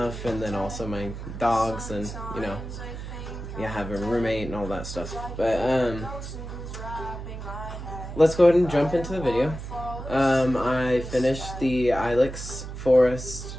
and then also my dogs and, having a roommate and all that stuff. But, let's go ahead and jump into the video. I finished the Ilex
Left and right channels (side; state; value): right; noise; hum, 9 dB below the sound